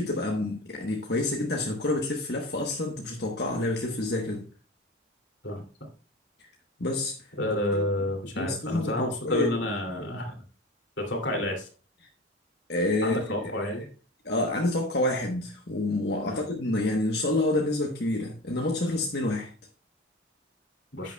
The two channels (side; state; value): both; normal; correlation 0.32